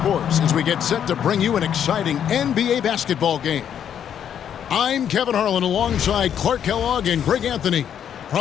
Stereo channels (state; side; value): quieter; right; 9.1 dB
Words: as we get set to bring you an exciting NBA basketball game. I'm Kevin Harlan alongside Clark Kellogg and Greg Anthony.